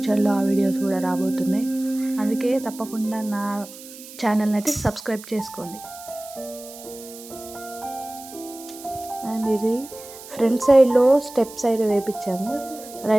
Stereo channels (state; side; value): noise; right; hiss, 16 dB below the sound